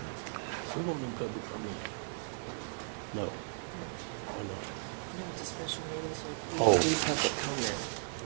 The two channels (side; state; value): left; silent; digital silence